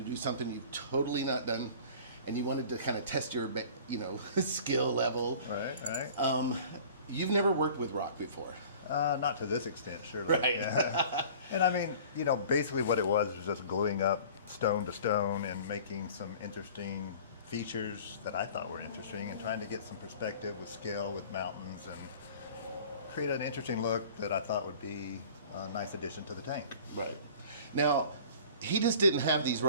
do something you've totally not done, and you wanted to kind of test your, skill level. Right. You've never worked with rock before. Not to this extent, surely. Right. Yeah. And I mean, basically what it was just gluing up stone to stone and making some interesting features that I thought were interesting, and trying to get some perspective with scale with mountains and create an interesting look that I thought would be a nice addition to the tank. Right. Now, he just didn't have these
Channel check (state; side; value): inverted; both; correlation -0.45